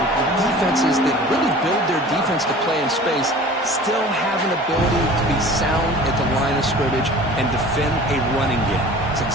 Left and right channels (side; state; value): both; normal; correlation 0.43